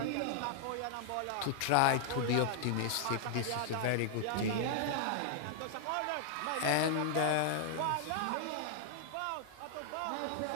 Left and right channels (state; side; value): different; both; correlation -0.01